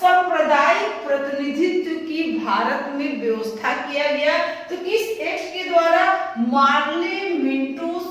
सांप्रदायिक प्रतिनिधित्व की भारत में व्यवस्था किया गया। तो किस एक्ट के द्वारा? मार्ले मिंटो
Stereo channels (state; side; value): identical; both; correlation 1.00